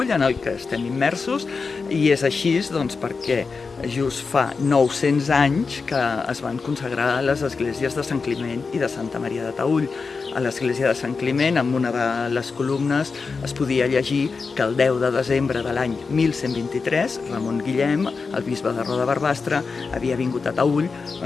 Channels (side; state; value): right; quieter; 4.7 dB